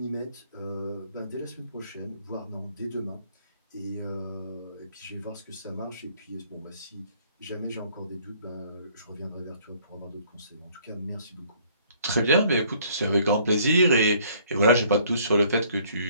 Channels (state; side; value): inverted; both; correlation -0.61